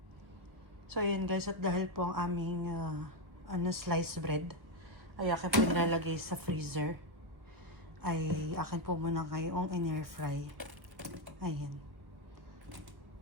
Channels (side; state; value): left; late; 1.3 ms